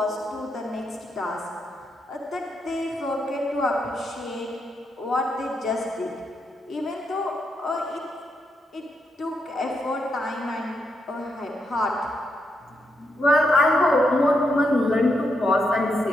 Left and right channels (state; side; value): normal; both; correlation 0.81